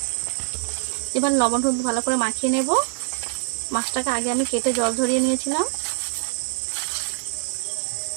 এবার লবণ হলুদ ভালো করে মাখিয়ে নেব। মাছটাকে আগে আমি কেটে জল ঝরিয়ে নিয়েছিলাম।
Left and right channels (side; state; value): left; silent; digital silence